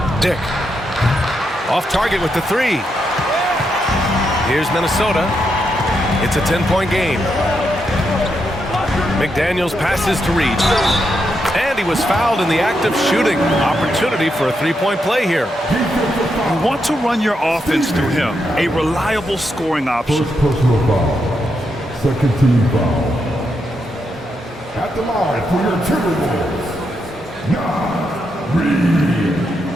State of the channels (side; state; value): both; normal; correlation 0.82